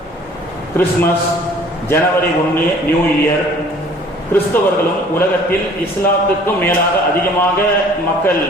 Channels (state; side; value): normal; both; correlation 0.52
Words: கிறிஸ்துமஸ், ஜனவரி 1 நியூ இயர். கிறிஸ்தவர்களும் உலகத்தில் இஸ்லாத்துக்கும் மேலாக அதிகமாக மக்கள்